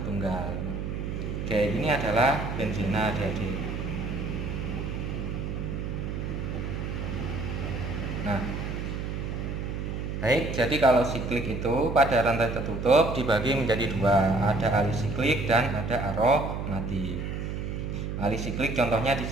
tunggal. Oke, ini adalah benzena adik-adik. Nah, baik, jadi kalau siklik itu pada rantai tertutup dibagi menjadi dua, ada alisiklik dan ada aromatik. Alisiklik contohnya di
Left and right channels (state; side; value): noise; right; hum, 4 dB below the sound